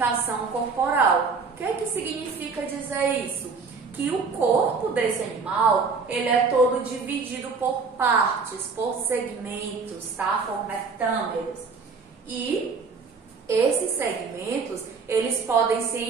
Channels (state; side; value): quieter; left; 4.9 dB